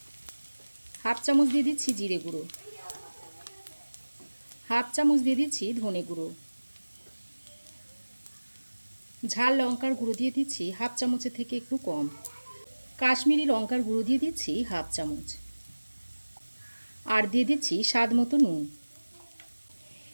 1/2 চামচ দিয়ে দিচ্ছি জিরে গুঁড়ো, 1/2 চামচ দিয়ে দিচ্ছি ধনে গুঁড়ো, ঝাল লঙ্কার গুঁড়ো দিয়ে দিচ্ছি 1/2 চামচের থেকে একটু কম, কাশ্মীরি লঙ্কার গুঁড়ো দিয়ে দিচ্ছি 1/2 চামচ, আর দিয়ে দিচ্ছি স্বাদ মতো নুন।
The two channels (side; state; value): both; inverted; correlation -1.00